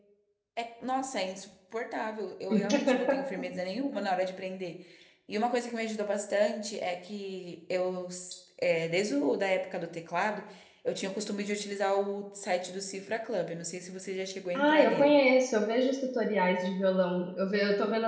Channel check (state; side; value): identical; both; correlation 1.00